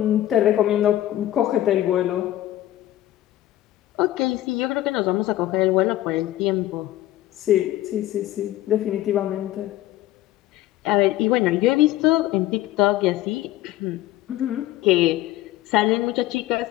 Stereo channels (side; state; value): right; quieter; 14.6 dB